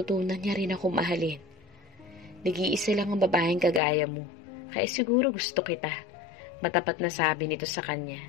niya rin ako mahalin. Nag-iisa lang ang babaeng kagaya mo, kaya siguro gusto kita," matapat na sabi nito sa kanya.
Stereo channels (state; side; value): drops out; right; at 3.8 s